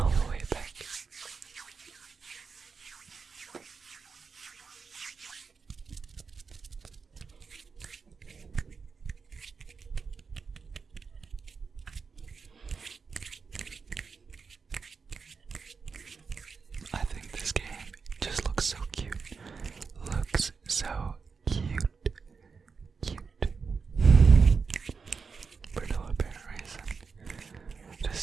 I think this game just looks so cute. For no apparent reason.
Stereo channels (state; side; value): quieter; left; 5.2 dB